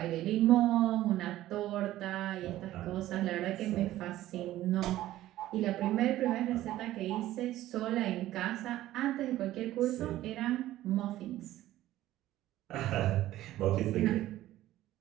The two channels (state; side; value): quieter; left; 14.7 dB